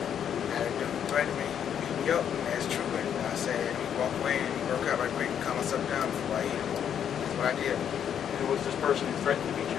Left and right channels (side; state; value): right; quieter; 8.8 dB